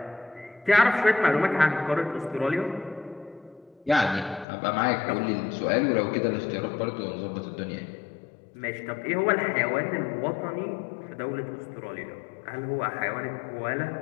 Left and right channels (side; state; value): right; drops out; at 4.5 s